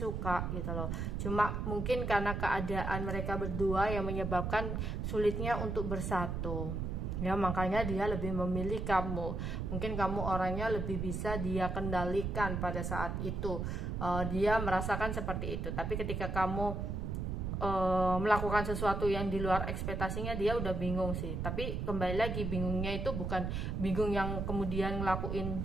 gitu loh. Cuma mungkin karena keadaan mereka berdua yang menyebabkan sulitnya untuk bersatu, ya, makanya dia lebih memilih kamu. Mungkin kamu orangnya lebih bisa dia kendalikan pada saat itu, dia merasakan seperti itu. Tapi ketika kamu melakukan sesuatu yang di luar ekspektasinya, dia udah bingung sih. Tapi kembali lagi, bingungnya itu bukan bingung yang kemudian ngelakuin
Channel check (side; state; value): right; noise; rumble, 2 dB below the sound